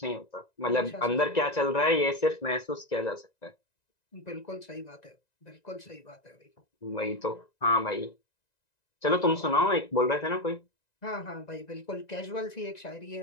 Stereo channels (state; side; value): late; right; 1.9 ms